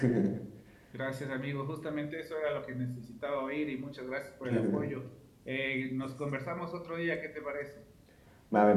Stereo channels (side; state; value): both; identical; correlation 1.00